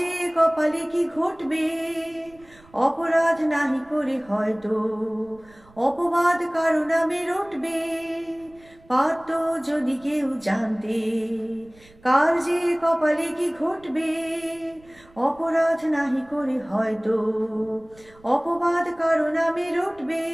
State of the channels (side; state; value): right; noise; rumble, 27 dB below the sound